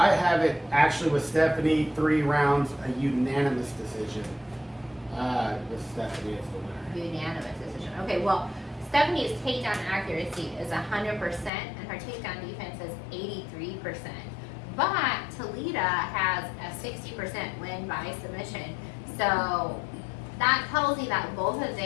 have it actually with Stephanie 3 rounds, a unanimous decision. With Stephanie as the winner. Unanimous decision. Okay, well, Stephanie's takedown accuracy is 100%, and her takedown defense is 83%. But Talita has a 60% win by submission. So that tells you that both of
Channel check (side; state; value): right; drops out; at 11.5 s